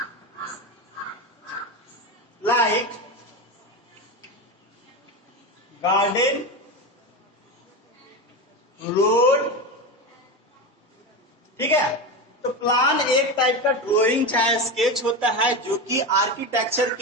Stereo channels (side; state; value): both; normal; correlation 0.19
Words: like garden, road, ठीक है। तो plan एक type का drawing चाहे sketch होता है जो कि आर्किटेक्चर